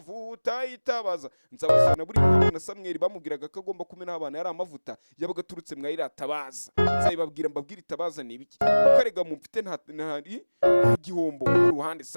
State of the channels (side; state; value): both; inverted; correlation -1.00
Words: yitabaza. Nzabazana buri mpamvu na Samweli bamubwiraga ko agomba kumena abana yari amavuta yabaga aturutse mwayiratabaza. Nzabibabwira mbabwira itabaza ni ibiki, ukarega mufite nta gihombo ku ruhande.